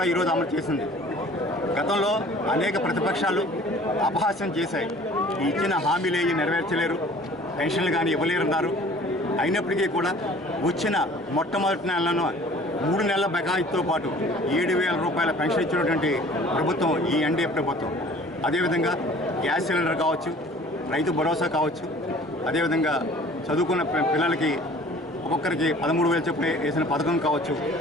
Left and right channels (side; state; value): both; normal; correlation 0.49